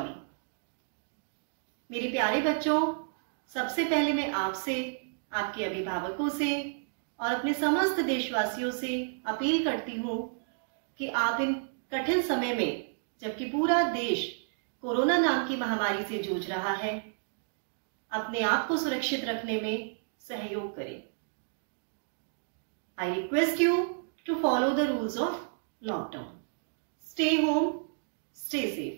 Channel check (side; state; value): left; silent; digital silence